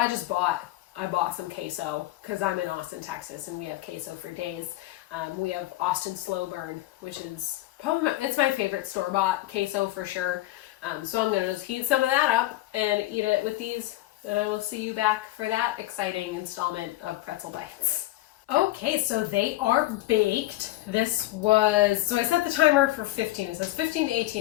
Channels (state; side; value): quieter; right; 16.8 dB